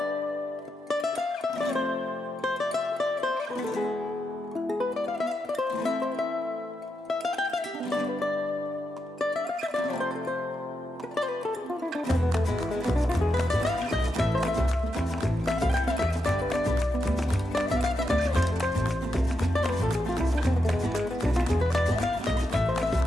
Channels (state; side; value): normal; both; correlation 0.84